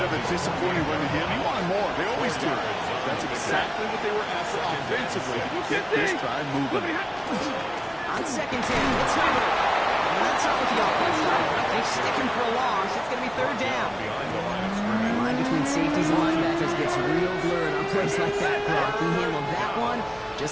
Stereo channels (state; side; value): identical; both; correlation 1.00